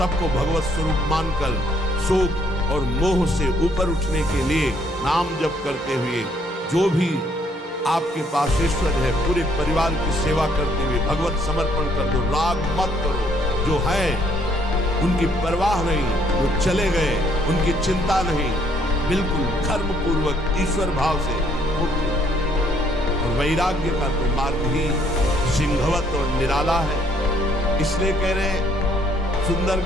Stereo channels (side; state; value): both; normal; correlation 0.66